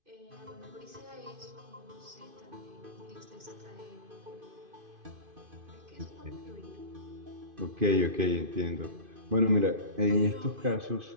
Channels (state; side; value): late; left; 2.5 ms